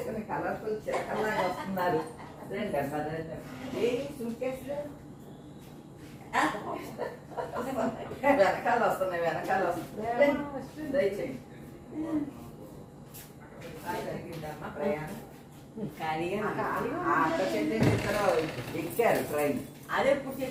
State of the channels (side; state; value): both; identical; correlation 1.00